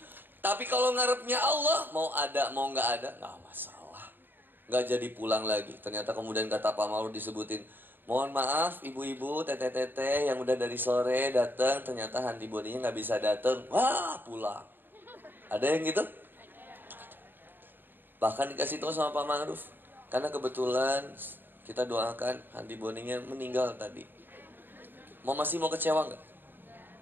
Tapi kalau ngarepnya Allah, mau ada mau nggak ada, nggak masalah. Nggak jadi pulang lagi. Ternyata kemudian kata Pak Ma'ruf disebutin, mohon maaf ibu-ibu, teteh-teteh yang udah dari sore datang, ternyata Handi Boninya nggak bisa datang. Wah, pulang. Ada yang gitu? Bahkan dikasih tahu sama Pak Ma'ruf. Karena kebetulan kita doakan Handi Boninya meninggal tadi. Masih mau kecewa nggak?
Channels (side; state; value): left; late; 0.094 ms